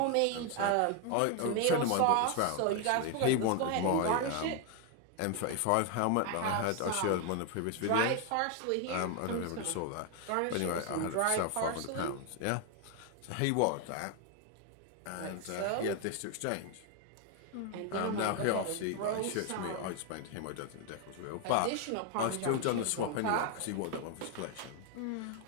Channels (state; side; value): different; both; correlation 0.01